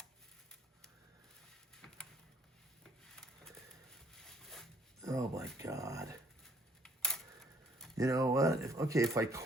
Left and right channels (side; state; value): both; normal; correlation 0.64